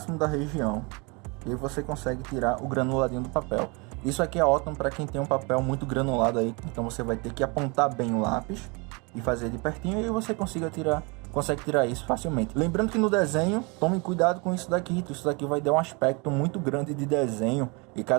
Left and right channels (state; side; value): quieter; left; 29.8 dB